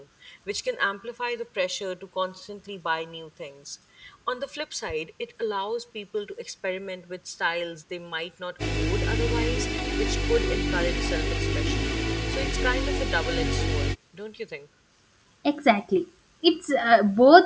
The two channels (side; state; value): both; identical; correlation 1.00